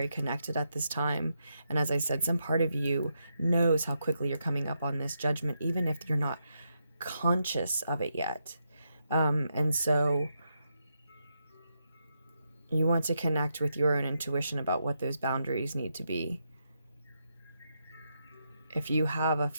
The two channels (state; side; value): inverted; both; correlation -0.82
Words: connected at this time. And as I said, some part of you knows how quickly you're coming up on this judgment, even if you're not conscious of it yet. And so you want to connect with your own intuition about what those boundaries need to be. If you have a